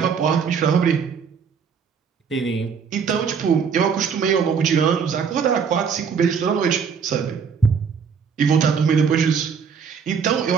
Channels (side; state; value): left; quieter; 6.4 dB